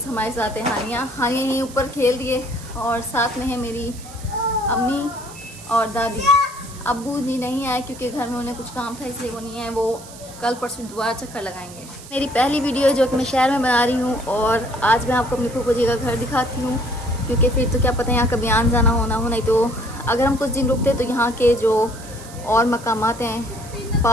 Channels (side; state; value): right; noise; hiss, 17 dB below the sound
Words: हमारे साथ है हानिया यहीं ऊपर खेल रही है, और साथ में है मेरी अम्मी और दादी। अब्बू जी नहीं आए क्योंकि घर में उन्हें कुछ काम था, इसलिए वो नहीं आए। वो कल परसों दोबारा चक्कर लगाएंगे। मेरी पहली वीडियो जो कि मैं शहर में बना रही हूँ, और आज मैं आपको अपनी फूफो जी का घर दिखाती हूँ, क्योंकि फिर तो क्या पता यहाँ कभी आना जाना होना हो। नहीं तो अगर हम कुछ दिन रुकते तो यहाँ के जो और मकामात हैं,